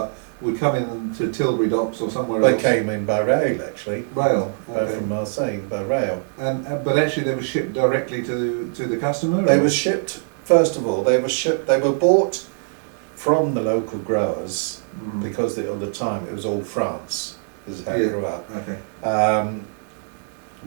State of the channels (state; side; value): silent; left; digital silence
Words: would come in to Tilbury Docks or somewhere else. They came in by rail, actually. Rail, okay. From Marseille by rail. And but actually they were shipped directly to the customer. They were shipped. First of all, they were shipped. They were bought from the local growers because at the time it was all France. This is how it grew up. Okay.